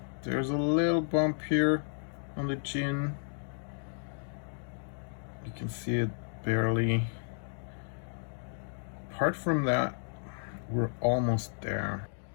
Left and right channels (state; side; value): silent; right; digital silence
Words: there's a little bump here on the chin. You can see it barely. Apart from that, we're almost there.